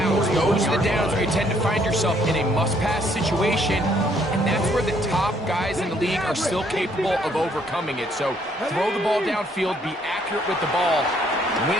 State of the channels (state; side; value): normal; both; correlation 0.67